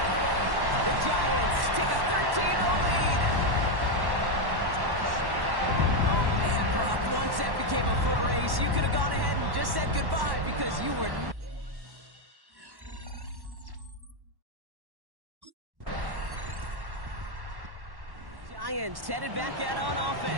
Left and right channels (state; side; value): late; left; 1.1 ms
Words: The Giants take a 13-0 lead. Oh, man, Brock, once that became a foot race, you could have gone ahead and just said goodbye because you were... Giants headed back out on